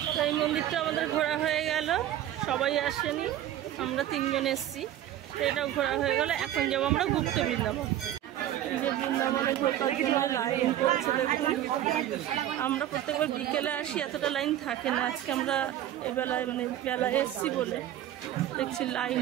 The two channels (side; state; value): left; quieter; 12.2 dB